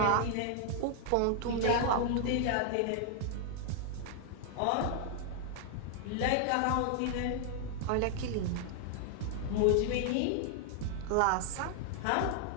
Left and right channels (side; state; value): both; different; correlation 0.00